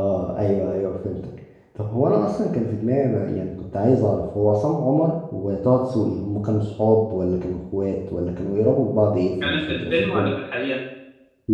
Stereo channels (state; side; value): identical; both; correlation 1.00